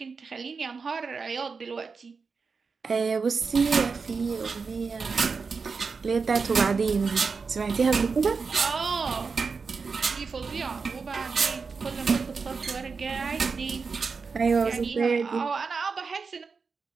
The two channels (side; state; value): left; quieter; 4.9 dB